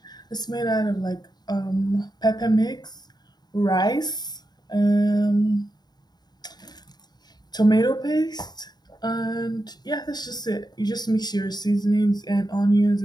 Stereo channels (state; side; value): late; right; 0.20 ms